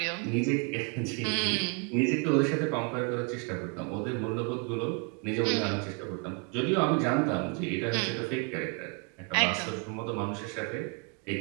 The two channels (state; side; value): quieter; left; 35.5 dB